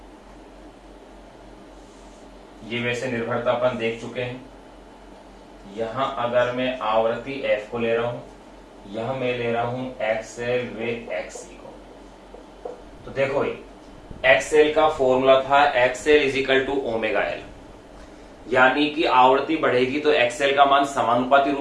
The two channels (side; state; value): both; identical; correlation 1.00